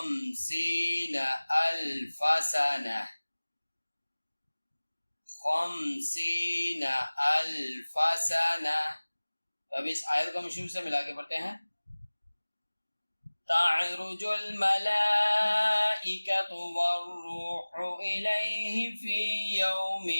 अल्फ सना। 50 अल्फ सना। अब इस आयत को हम शुरू से मिला के पढ़ते हैं। तअरुजुल मलाइकतु वर्रूहु इलैहि फी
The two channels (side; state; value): both; inverted; correlation -1.00